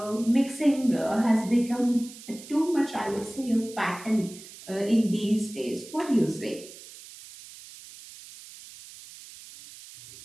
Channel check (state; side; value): noise; right; hiss, 17 dB below the sound